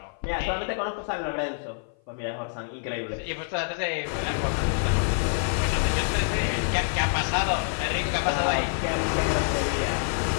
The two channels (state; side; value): silent; right; 55 dB below the other